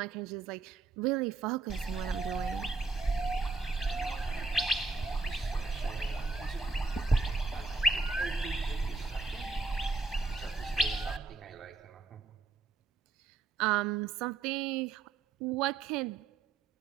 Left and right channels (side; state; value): left; quieter; 3.9 dB